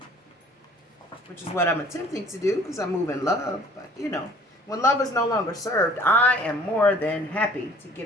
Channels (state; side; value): normal; both; correlation 0.52